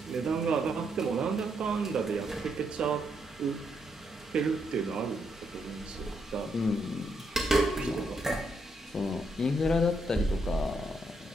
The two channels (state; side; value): normal; both; correlation 0.78